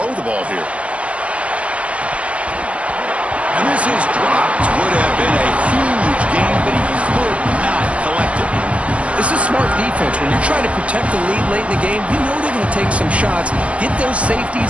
the ball here. And this is dropped. Would have been a huge game, but he could not collect it. This is smart defense. When you're trying to protect the lead late in the game, you know they're going to take some shots. Get those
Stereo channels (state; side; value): late; left; 0.063 ms